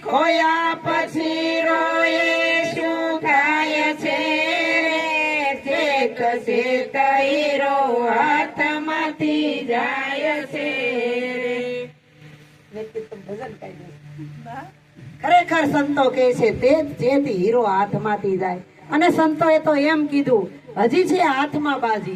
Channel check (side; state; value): both; identical; correlation 1.00